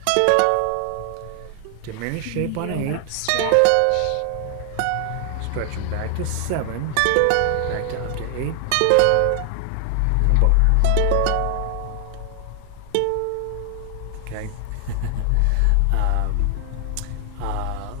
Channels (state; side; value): different; both; correlation 0.00